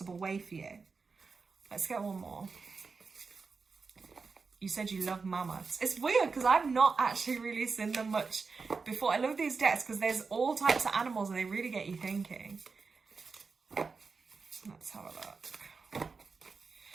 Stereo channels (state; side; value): quieter; left; 4.7 dB